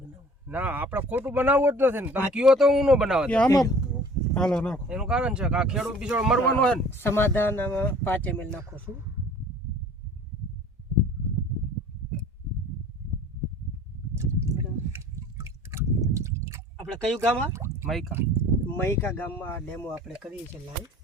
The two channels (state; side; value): normal; both; correlation 0.48